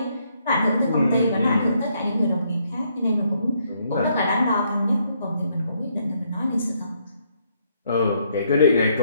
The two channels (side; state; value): both; inverted; correlation -0.72